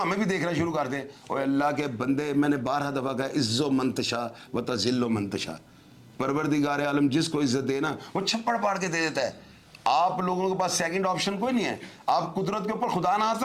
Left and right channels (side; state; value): both; identical; correlation 1.00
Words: भी देखना शुरू कर दें। और अल्लाह के बंदे, मैंने 12 दफ़ा कहा, इज़्ज़ो मंतशा व तज़िल्लो मंतशा, परवरदिगार आलम जिसको इज्जत दे ना वो छप्पड़ पाड़ के दे देता है। आप लोगों के पास सेकंड ऑप्शन कोई नहीं है। आप कुदरत के ऊपर खुदा ना